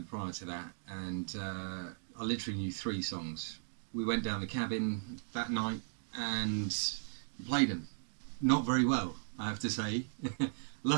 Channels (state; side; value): silent; left; digital silence